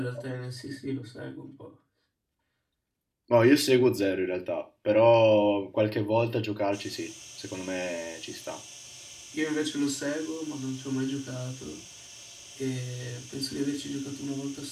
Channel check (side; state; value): both; identical; correlation 1.00